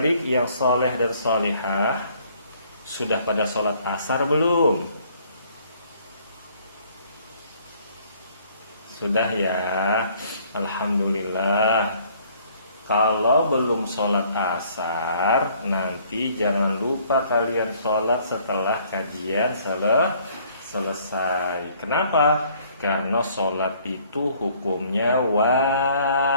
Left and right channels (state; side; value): inverted; both; correlation -0.60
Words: yang soleh dan solihah, sudah pada sholat asar belum? Sudah ya, alhamdulillah. Kalau belum sholat asar, nanti jangan lupa kalian sholat setelah kajian selesai. Kenapa? Karena sholat itu hukumnya wajib.